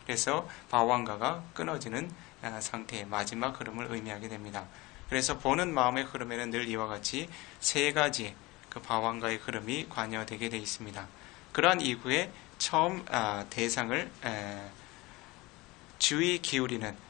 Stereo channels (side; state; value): right; quieter; 22.1 dB